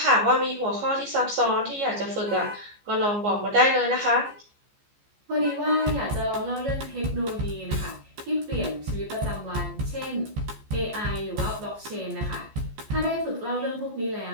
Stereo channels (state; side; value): late; left; 15 ms